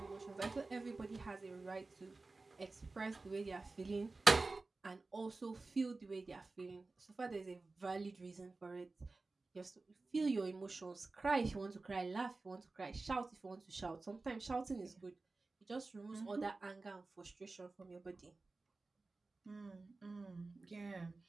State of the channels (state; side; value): quieter; left; 3.5 dB